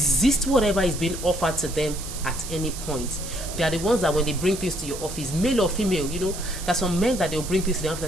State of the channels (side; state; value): right; noise; hiss, 10 dB below the sound